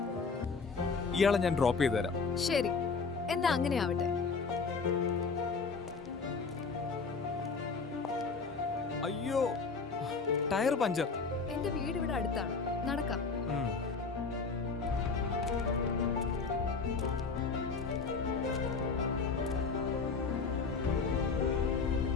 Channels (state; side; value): quieter; right; 4.7 dB